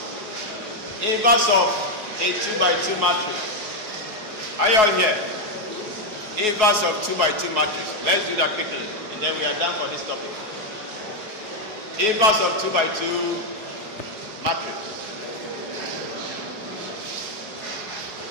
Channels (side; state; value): left; late; 4.7 ms